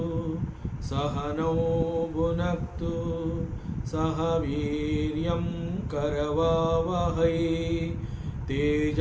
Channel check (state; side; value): identical; both; correlation 1.00